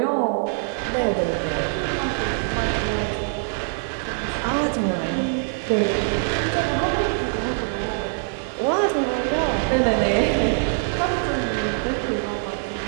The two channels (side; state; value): left; silent; 63 dB below the other